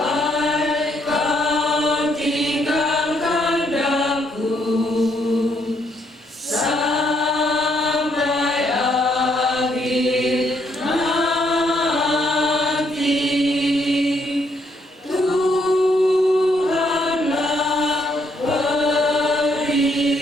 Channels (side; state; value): both; normal; correlation 0.72